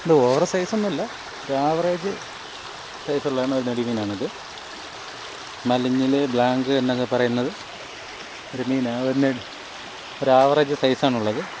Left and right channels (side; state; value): both; identical; correlation 1.00